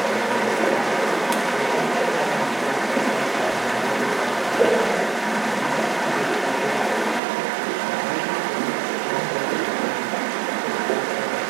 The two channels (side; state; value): left; drops out; at 7.2 s